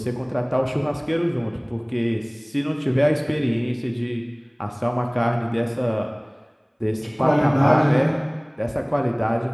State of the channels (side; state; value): both; identical; correlation 1.00